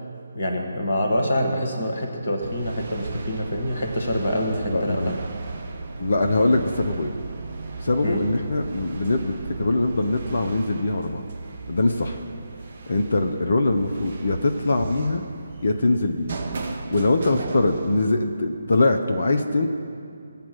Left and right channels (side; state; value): both; inverted; correlation -0.87